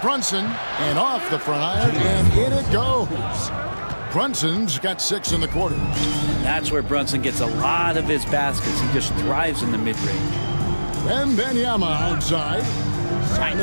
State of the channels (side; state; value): both; inverted; correlation -1.00